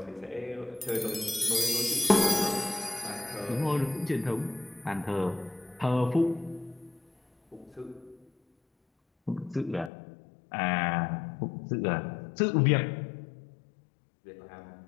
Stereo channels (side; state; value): right; drops out; at 9.9 s